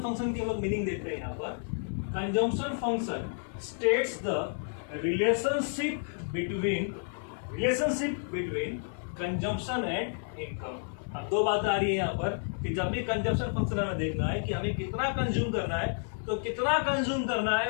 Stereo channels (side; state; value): right; silent; digital silence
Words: फंक्शन की हम लोग मीनिंग देखते हैं यहाँ पर। Consumption function states the relationship between consumption and income. अब दो बात आ रही है यहाँ पर कि जब भी कंजम्पशन फंक्शन हमें देखना है कि हमें कितना कंज्यूम करना है, तो कितना कंज्यूम करना